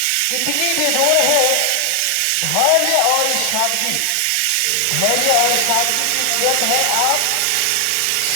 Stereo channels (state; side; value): different; both; correlation 0.00